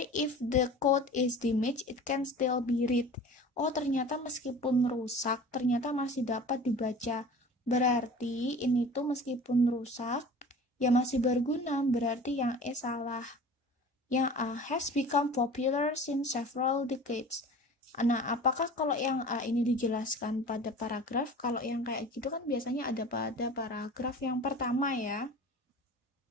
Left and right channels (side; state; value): both; normal; correlation 0.40